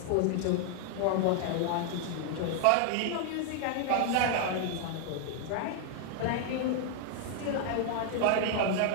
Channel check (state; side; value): different; both; correlation 0.00